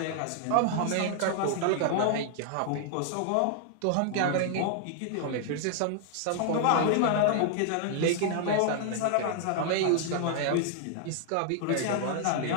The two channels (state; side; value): different; both; correlation 0.00